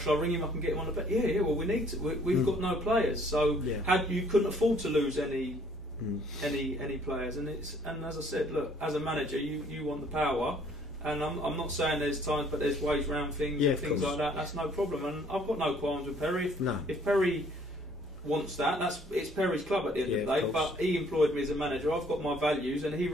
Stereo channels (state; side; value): normal; both; correlation 0.60